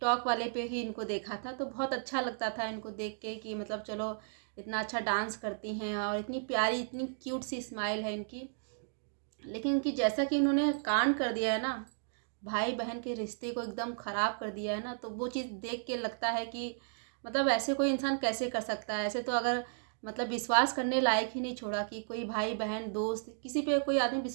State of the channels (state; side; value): silent; left; digital silence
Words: वाले पे ही इनको देखा था तो बहुत अच्छा लगता था इनको देख के कि मतलब चलो इतना अच्छा डांस करती हैं और इतनी प्यारी इतनी क्यूट सी स्माइल है इनकी। लेकिन इनकी जैसा कि इन्होंने कांड कर दिया है ना, भाई बहन के रिश्ते को एकदम ख़राब कर दिया है ना, तो वो चीज़ देख के लगता है कि मतलब ऐसे कोई इंसान कैसे कर सकता है। ऐसे तो अगर मतलब विश्वास करने लायक ही नहीं छोड़ा कि कोई भाई बहन दोस्त किसी पे कोई आदमी